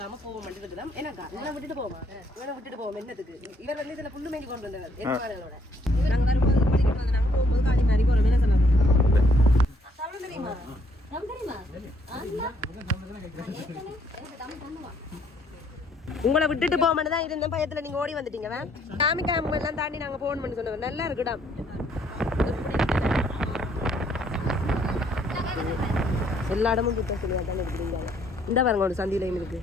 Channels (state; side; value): normal; both; correlation 0.67